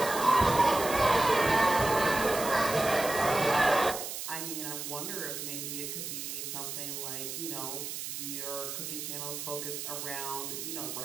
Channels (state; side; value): noise; right; hiss, 6 dB below the sound